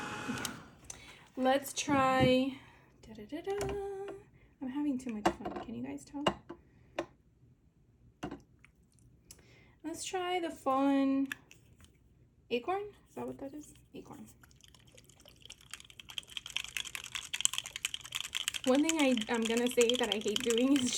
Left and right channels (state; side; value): identical; both; correlation 1.00